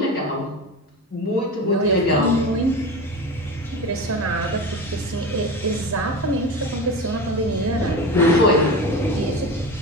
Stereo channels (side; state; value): both; normal; correlation 0.27